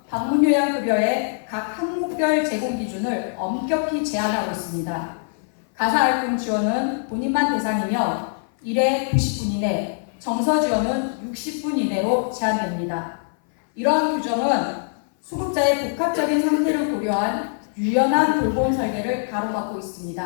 방문요양급여의 각 항목별 제공 기준을 엄격히 제한하고 있습니다. 가사활동 지원은 본인만 대상이며 1회 90분 이내, 정서 지원은 60분 이내로 제한됩니다. 이러한 규정은 수급자의 복합적인 상태를 고려한 유연한 돌봄 설계를 가로막고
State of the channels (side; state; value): right; silent; 58 dB below the other